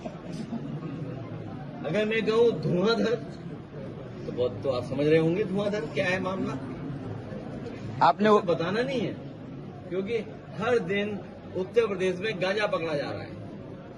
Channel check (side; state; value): both; identical; correlation 1.00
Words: अगर मैं कहूं धुआंधर तो बहुत, तो आप समझ रहे होंगे धुआंधर क्या है मामला। आपने वो बताना नहीं है, क्योंकि हर दिन उत्तर प्रदेश में गांजा पकड़ा जा रहा है।